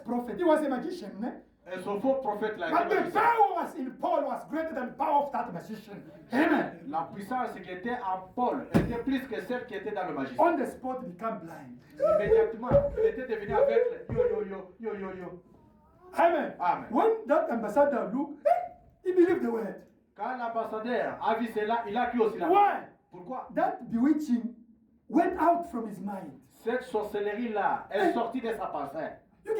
he was a magician, eh? Et ce faux prophète-là, But était the magicien. power was in Paul was greater than the power of that magician. Amen. La puissance qui était en Paul était plus que celle qui était dans le magicien. On the spot, he become blind. Immédiatement, il était devenu aveugle. Yo. Amen. Amen. When that ambassador looked, he believed the word. Quand l'ambassadeur a vu cela, il a cru aussi la Why? parole. Pourquoi? That bewitching went out from his mind. Cette sorcellerie-là est sortie de sa pensée. You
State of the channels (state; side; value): identical; both; correlation 1.00